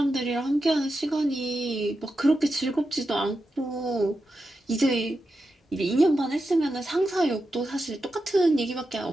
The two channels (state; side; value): normal; both; correlation 0.89